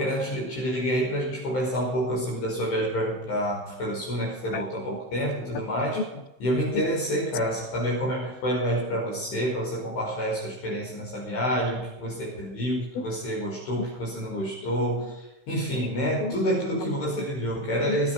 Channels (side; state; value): right; late; 15 ms